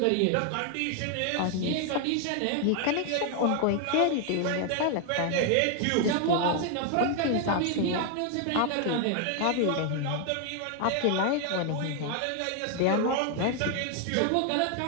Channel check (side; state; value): both; different; correlation 0.00